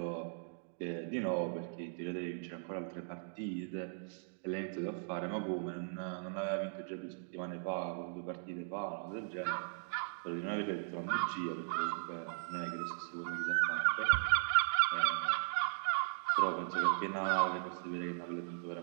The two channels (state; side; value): silent; left; digital silence